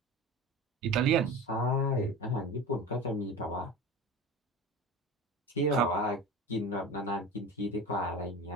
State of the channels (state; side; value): normal; both; correlation 0.32